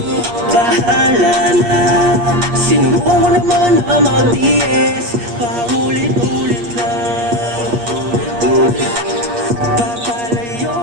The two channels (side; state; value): left; late; 8.4 ms